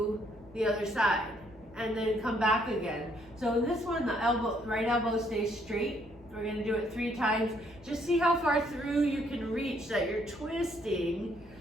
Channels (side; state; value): both; normal; correlation 0.69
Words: the other side. And then come back again. So in this one, the right elbow stays straight. We're gonna do it 3 times. Just see how far through you can reach that you're twisting